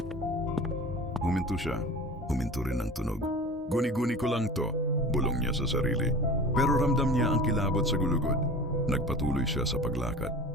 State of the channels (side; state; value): both; normal; correlation 0.36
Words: Huminto siya. Huminto rin ang tunog. Guni-guni ko lang to, bulong niya sa sarili. Pero ramdam niya ang kilabot sa gulugod. Nagpatuloy siya sa paglakad.